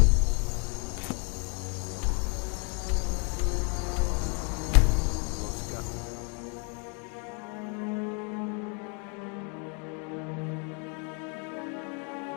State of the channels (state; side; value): quieter; right; 36.3 dB